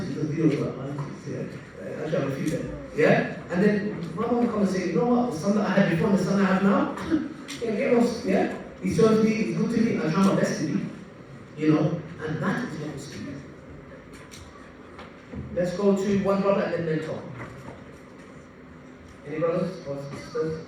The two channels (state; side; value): identical; both; correlation 1.00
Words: the videos about ISIS, yeah? Actually, I refuse that. Yeah? And then my mom would come and say, you know what, the son that I had before and the son I have now, get lost, yeah? He serves me, he's good to me, I try my best to be. And that is what we speak. Let's go to one brother and then mentor. Any brothers or sisters?